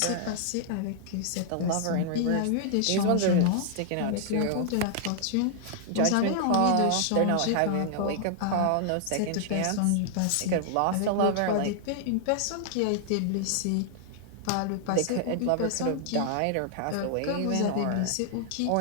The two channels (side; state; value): both; different; correlation -0.01